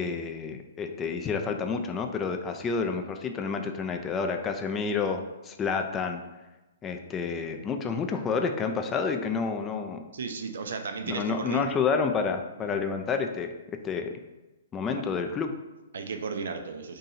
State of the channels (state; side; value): quieter; right; 4.2 dB